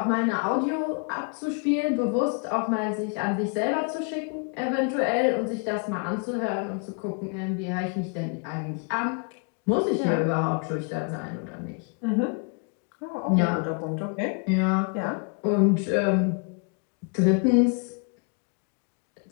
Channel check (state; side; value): quieter; right; 36.0 dB